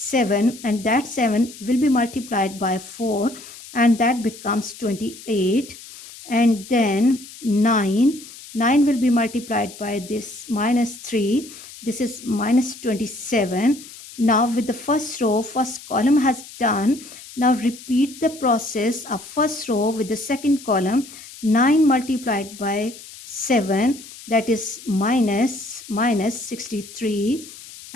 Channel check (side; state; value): left; noise; hiss, 17 dB below the sound